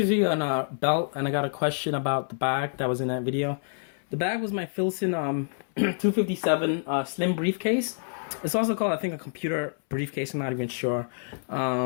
on a belt, and I got a question about the bag that was in that video. The bag was my Filson 257 slim briefcase. It's also called, I think, a computer briefcase. I'm not even sure.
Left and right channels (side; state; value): right; silent; 60 dB below the other